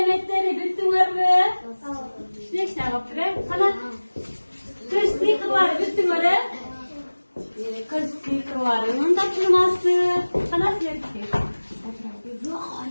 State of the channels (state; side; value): inverted; both; correlation -1.00